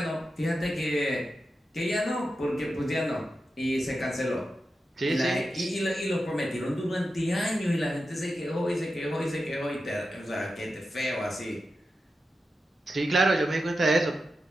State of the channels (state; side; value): normal; both; correlation 0.90